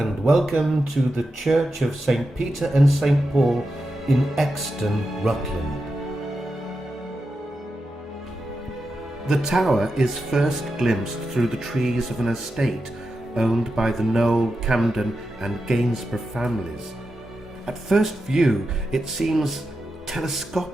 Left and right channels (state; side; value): normal; both; correlation 0.89